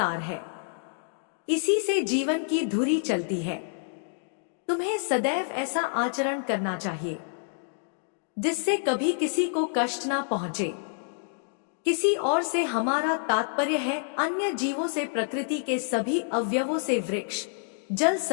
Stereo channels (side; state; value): right; silent; digital silence